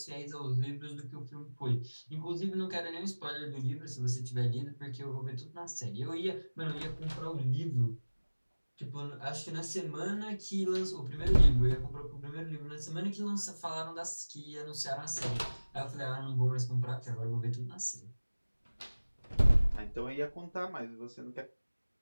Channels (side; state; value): both; inverted; correlation -1.00